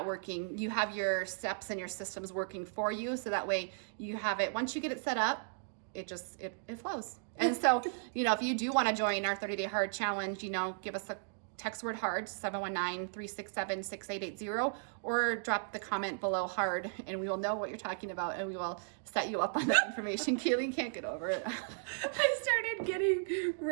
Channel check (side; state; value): left; silent; digital silence